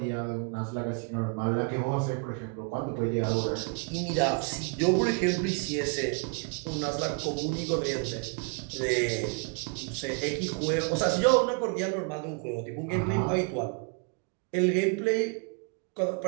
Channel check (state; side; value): quieter; left; 37.7 dB